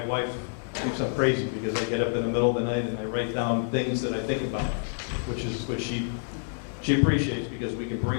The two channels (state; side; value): silent; right; digital silence